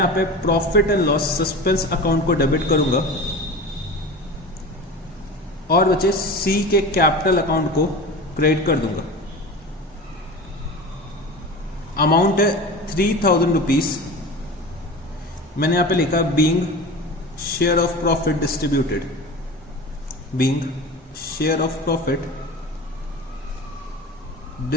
पे profit and loss suspense account को डेबिट करूंगा और बच्चे सी के कैपिटल अकाउंट को क्रेडिट कर दूंगा। अमाउंट है 3000 रुपीज। मैंने यहां पे लिखा being share of profit distributed, being share of profit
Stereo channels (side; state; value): both; normal; correlation 0.33